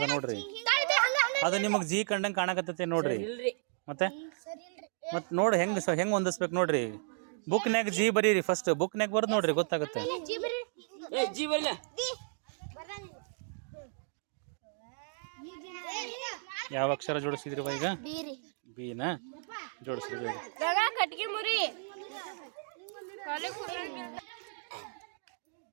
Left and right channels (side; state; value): left; silent; digital silence